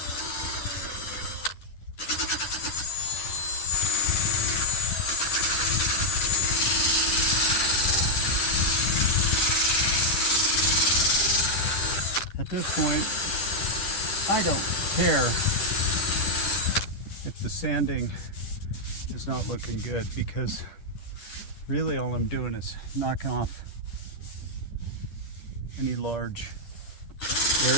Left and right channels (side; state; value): right; late; 10 ms